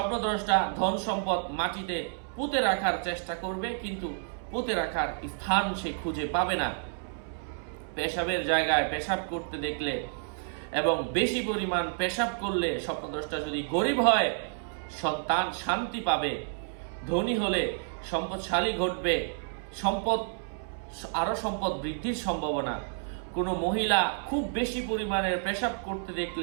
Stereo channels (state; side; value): silent; left; 58 dB below the other